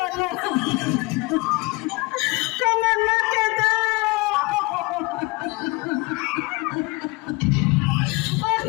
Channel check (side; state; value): right; quieter; 25.4 dB